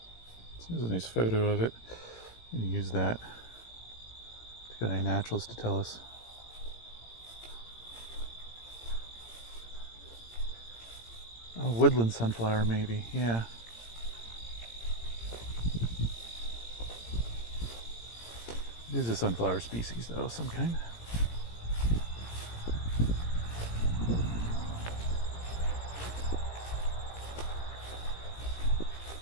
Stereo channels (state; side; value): late; right; 17 ms